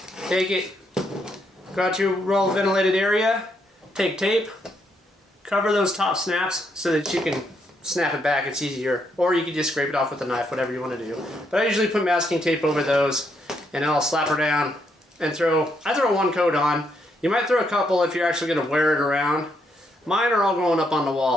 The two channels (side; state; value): both; normal; correlation 0.76